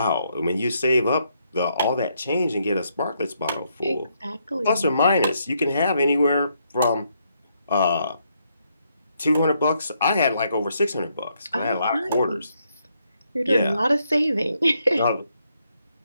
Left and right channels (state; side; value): inverted; both; correlation -0.76